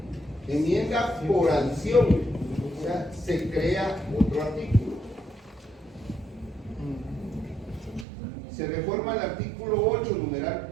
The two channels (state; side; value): drops out; left; at 8.1 s